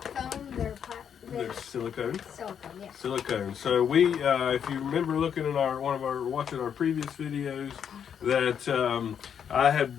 foam, they're They're silicone. Silicone, yeah. Silicone. So we, if you remember looking at watching our previous videos, that I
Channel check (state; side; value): quieter; right; 8.1 dB